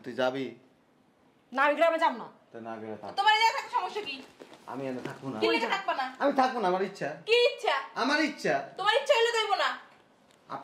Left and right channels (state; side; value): identical; both; correlation 1.00